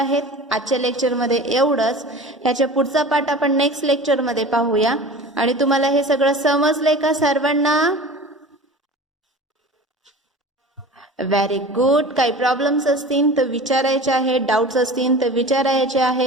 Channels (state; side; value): normal; both; correlation 0.37